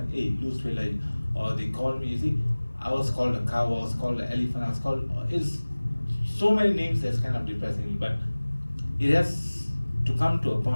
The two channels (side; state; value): both; inverted; correlation -1.00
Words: Hey, lose weight, like, or they call me. You see, I was called a cow. I was called an elephant. I was called. It's so many names that's kind of depressing. But it has to come to a